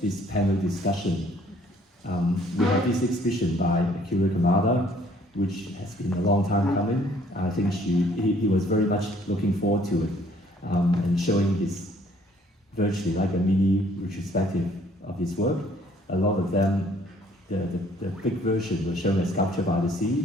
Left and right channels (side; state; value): both; normal; correlation 0.60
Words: this panel discussion. We have this exhibition by Akira Kamada, which has been a long time coming. I think he was very much looking forward to it and showing his virtually like a mini retrospective of his work. A lot of them, the big version was shown as Sculpture by the